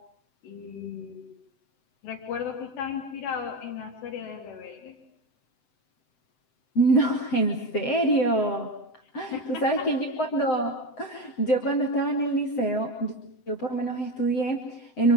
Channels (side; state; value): right; late; 7.8 ms